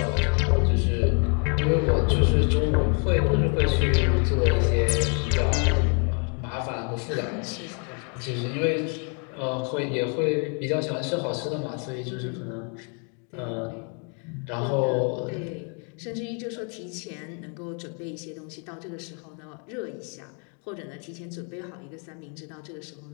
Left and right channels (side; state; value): right; quieter; 39.4 dB